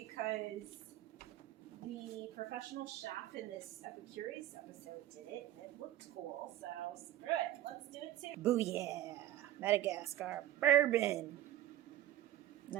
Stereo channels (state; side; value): quieter; left; 13.1 dB